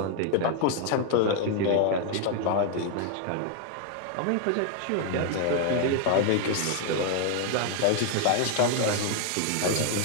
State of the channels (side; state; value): both; different; correlation 0.00